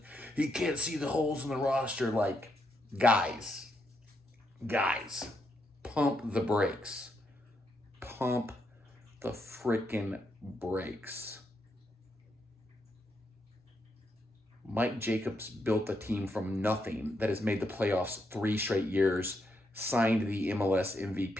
He can't see the holes in the roster. Like, guys, pump the brakes. Pump the freaking brakes. Mike Jacobs built a team from nothing that has made the playoffs 3 straight years, signed the MLS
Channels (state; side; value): normal; both; correlation 0.80